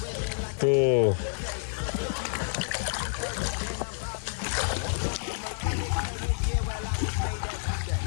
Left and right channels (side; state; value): right; silent; digital silence